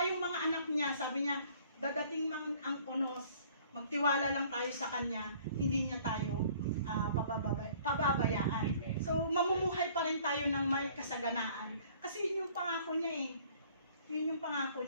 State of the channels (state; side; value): inverted; both; correlation -0.55